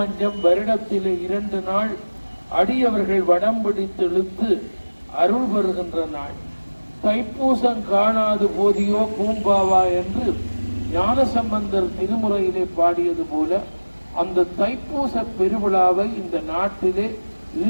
வருடத்திலே 2 நாள் அடியவர்கள் வடம் பிடித்து இழுத்து அருள் பெறுகின்ற நாள். தைப்பூசம் காணாது போதியோ பூம்பாவா என்று ஞானசம்பந்தர் திருமுறையிலே பாடியது போல அந்த தைப்பூச பெருவிழாவை இந்த நாட்டிலே,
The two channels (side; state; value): both; inverted; correlation -1.00